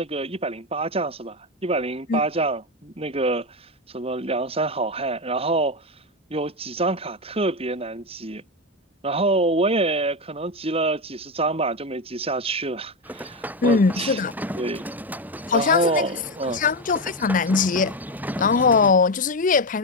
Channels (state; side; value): normal; both; correlation 0.12